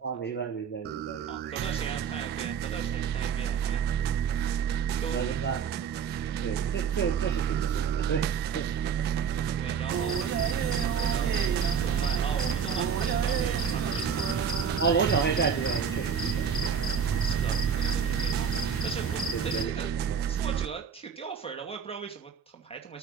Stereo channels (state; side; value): quieter; left; 7.0 dB